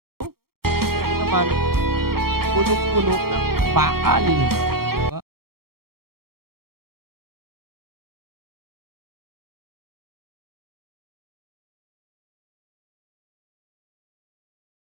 Ito naman, punong-puno ng bakal, 'di ba?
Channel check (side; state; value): left; late; 0.94 ms